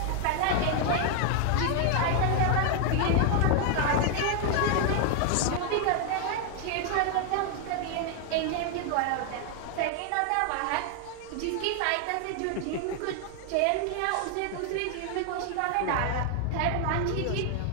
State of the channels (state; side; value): different; both; correlation 0.00